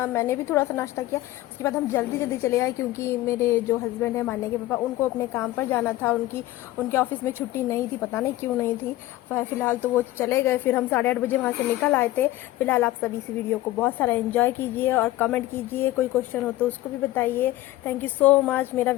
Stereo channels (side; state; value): right; quieter; 16.2 dB